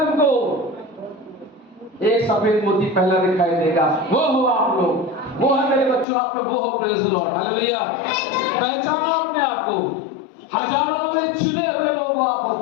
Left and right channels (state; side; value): drops out; right; at 6.1 s